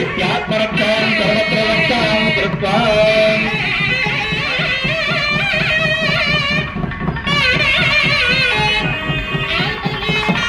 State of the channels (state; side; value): identical; both; correlation 1.00